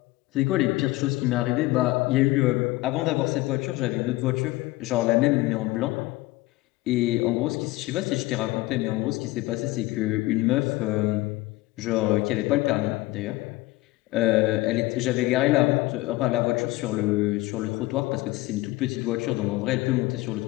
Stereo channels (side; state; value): right; quieter; 19.3 dB